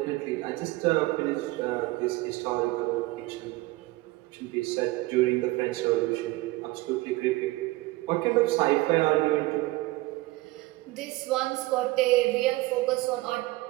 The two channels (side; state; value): left; quieter; 20.4 dB